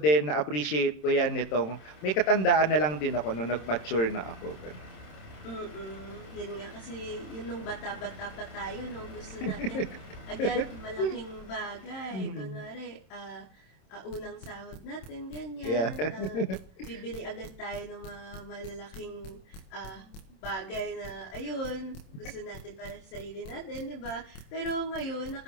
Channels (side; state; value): right; late; 27 ms